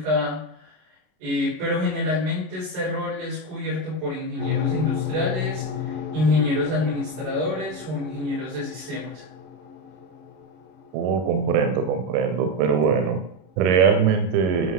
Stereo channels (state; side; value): late; left; 33 ms